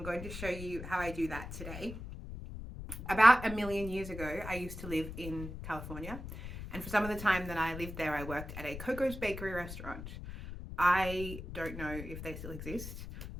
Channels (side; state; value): left; noise; rumble, 9 dB below the sound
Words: going to show you how I do that today. About a million years ago, I used to live in California, and for some of the time that I lived there, I worked at a Coco's bakery restaurant. I don't know if they still exist